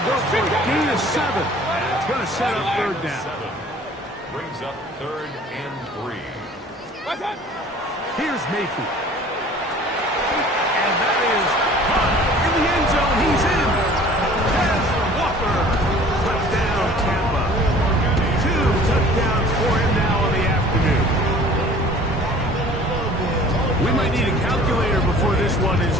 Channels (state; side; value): normal; both; correlation 0.49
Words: go for a gain of 7. And it's going to set up 3rd down. Brings up 3rd and 3. Here's Mayfield. And that is caught in the end zone. He's in. Has Walker. Touchdown, Tampa. 2 touchdowns for him now in the afternoon. We might need a calculator before this one is